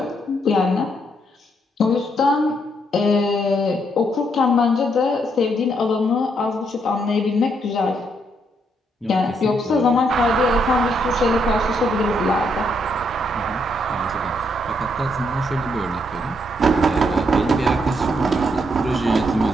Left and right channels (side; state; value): both; normal; correlation 0.75